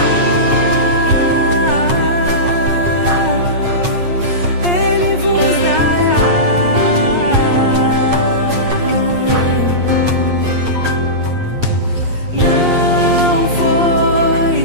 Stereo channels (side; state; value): left; late; 8.5 ms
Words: Ele vos dará. Não